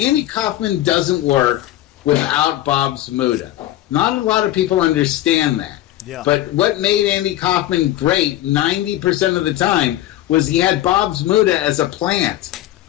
Kaufman doesn't work without Bob Zamuda. Not a lot of people understand that. Yeah. But what made Andy Kaufman great 90% of the time was he had Bob Zamuda as a plant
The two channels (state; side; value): quieter; right; 14.2 dB